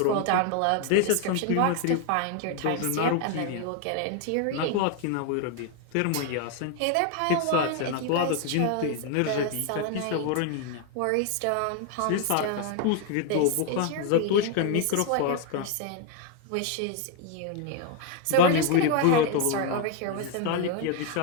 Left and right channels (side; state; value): both; different; correlation 0.01